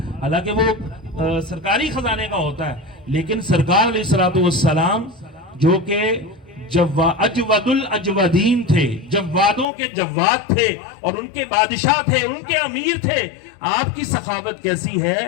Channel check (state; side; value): drops out; right; at 9.7 s